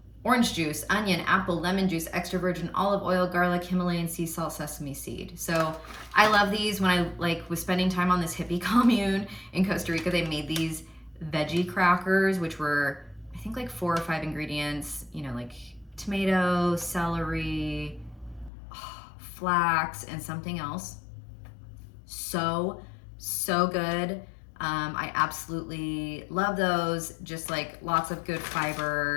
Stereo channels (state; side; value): drops out; right; at 18.5 s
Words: Orange juice, onion, apple, lemon juice, extra virgin olive oil, garlic, Himalayan sea salt, sesame seed. So I love these. When I was spending time on this hippie commune in Costa Rica, they made these veggie crackers, which were, I think, like 4 or 5 ingredients, like tomato, celery, flax, and something else. So So good. I absolutely love those. Just like lots of good